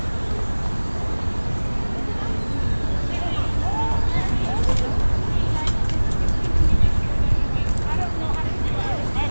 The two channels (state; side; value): inverted; both; correlation -1.00